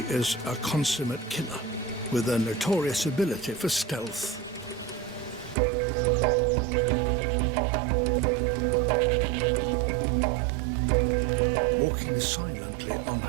a consummate killer, with a notorious ability for stealth. Walking silently on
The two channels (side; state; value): left; drops out; at 5.6 s